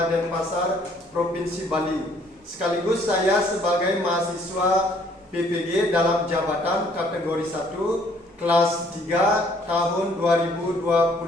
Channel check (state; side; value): normal; both; correlation 0.62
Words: Denpasar, Provinsi Bali. Sekaligus saya sebagai mahasiswa PPG dalam jabatan kategori 1 kelas 3 tahun